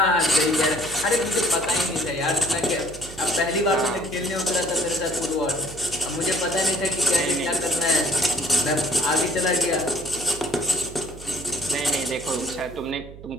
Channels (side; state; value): right; noise; hum, 16 dB below the sound